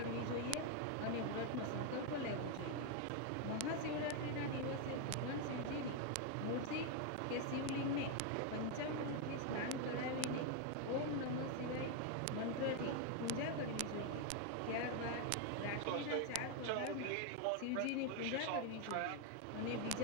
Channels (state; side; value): different; both; correlation 0.01